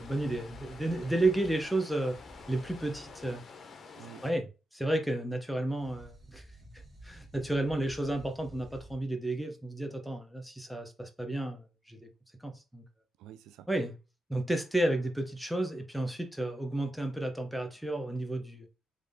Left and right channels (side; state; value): both; normal; correlation 0.90